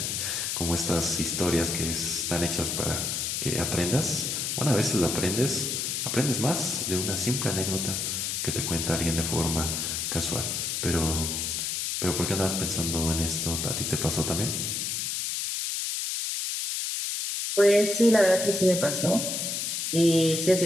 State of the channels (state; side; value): noise; left; hiss, 1 dB below the sound